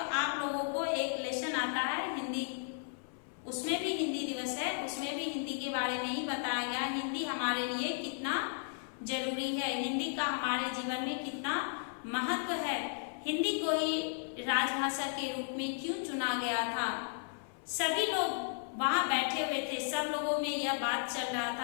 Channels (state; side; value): silent; right; 55 dB below the other